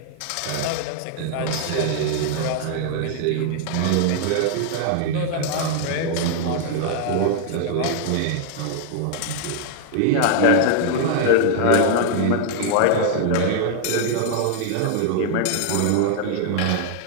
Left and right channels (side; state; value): both; different; correlation 0.00